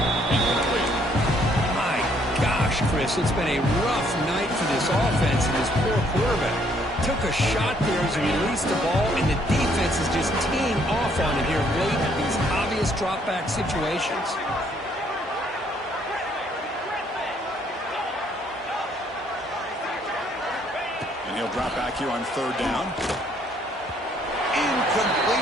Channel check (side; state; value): both; normal; correlation 0.67